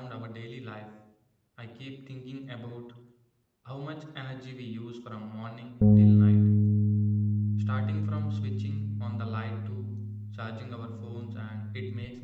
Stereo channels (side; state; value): both; identical; correlation 1.00